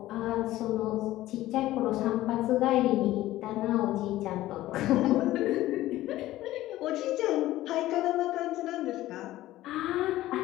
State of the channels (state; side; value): quieter; right; 15.5 dB